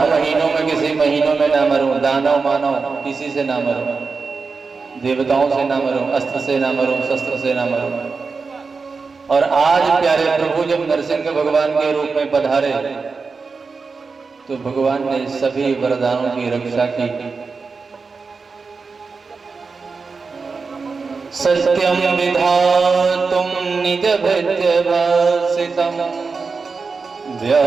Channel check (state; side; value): quieter; left; 4.6 dB